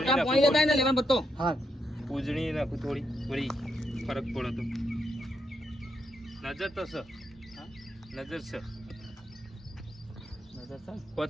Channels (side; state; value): both; normal; correlation 0.80